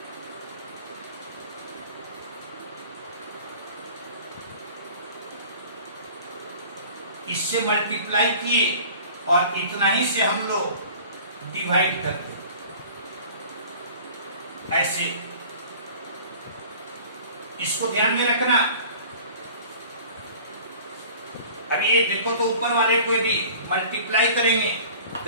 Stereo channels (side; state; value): both; inverted; correlation -0.45